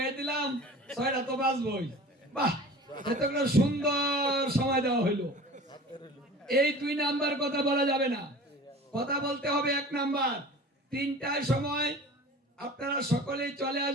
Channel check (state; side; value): normal; both; correlation 0.40